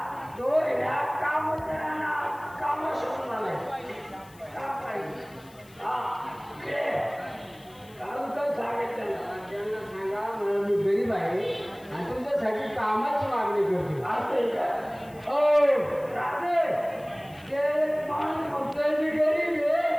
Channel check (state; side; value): noise; left; hiss, 26 dB below the sound